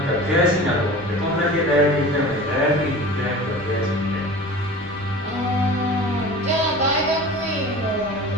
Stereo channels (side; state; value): both; normal; correlation 0.38